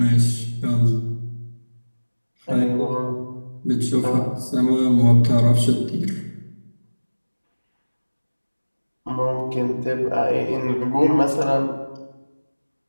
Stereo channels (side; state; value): both; inverted; correlation -1.00